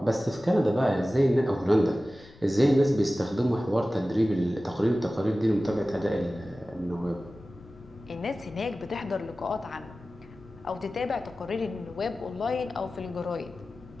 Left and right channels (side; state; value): left; noise; rumble, 24 dB below the sound